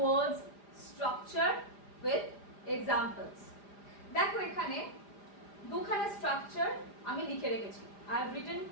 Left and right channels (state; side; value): late; right; 4.9 ms